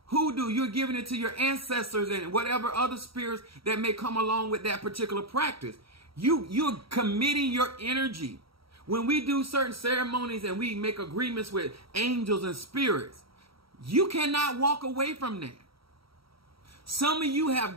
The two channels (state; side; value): late; left; 0.75 ms